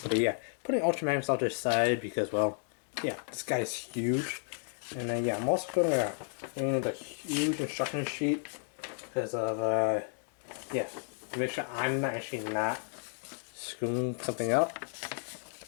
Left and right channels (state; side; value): silent; right; 56 dB below the other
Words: But yeah, putting Ultra Magnus off to the side because, well, yeah, this guy is huge. And then yeah, I'm also gonna bring the huge instruction sheet because of yeah, to make sure I'm not screwing something up.